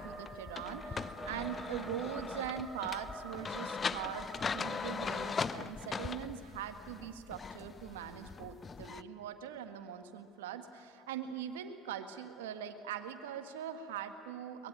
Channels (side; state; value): both; normal; correlation 0.35